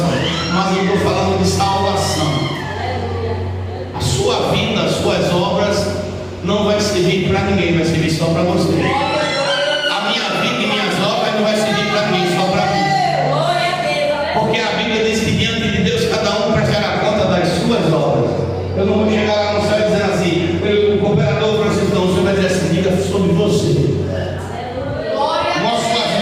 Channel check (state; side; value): noise; right; hum, 30 dB below the sound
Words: Mas eu estou falando de salvação. A sua vida, as suas obras não vai servir para ninguém, vai servir só para você. A minha vida e minhas obras não vai servir para ninguém, só para mim. Porque a Bíblia diz que diante de Deus cada um prestará conta das suas obras. Eu não vou chegar lá no céu dizendo assim, o cooperador Francisco, não, o senhor vai dizer assim, diga sobre você. Mostre as